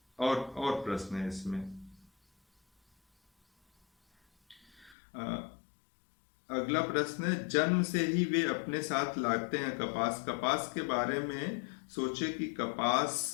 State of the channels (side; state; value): right; drops out; at 5.0 s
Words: और प्रश्न है इसमें। अगला प्रश्न है, जन्म से ही वे अपने साथ लाते हैं कपास। कपास के बारे में सोचे कि कपास